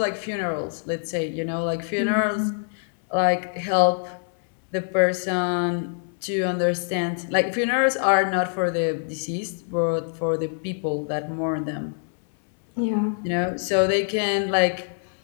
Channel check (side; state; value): right; silent; 62 dB below the other